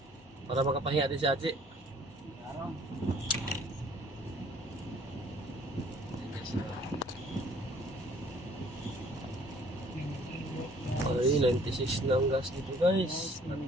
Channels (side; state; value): both; normal; correlation 0.57